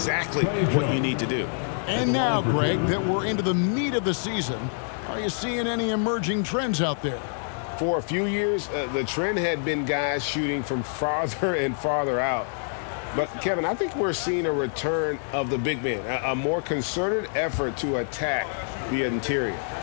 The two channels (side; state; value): right; silent; digital silence